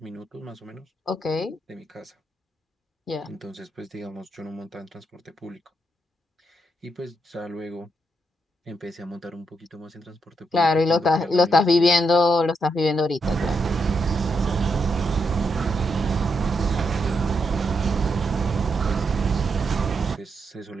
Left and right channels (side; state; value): both; normal; correlation 0.81